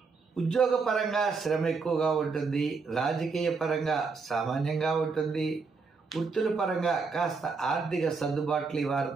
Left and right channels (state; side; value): quieter; left; 4.7 dB